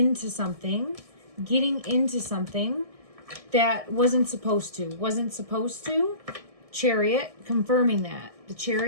something that wasn't supposed to. Chariot confirming that. The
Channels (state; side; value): late; left; 1.6 ms